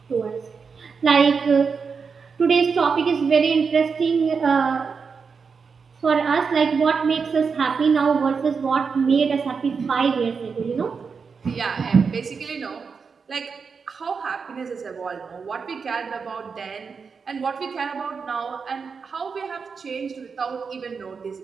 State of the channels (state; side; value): quieter; left; 5.5 dB